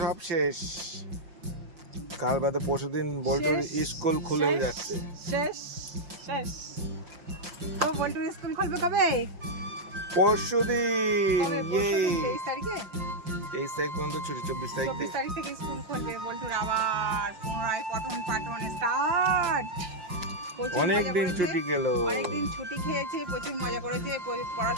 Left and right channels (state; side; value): late; left; 5.6 ms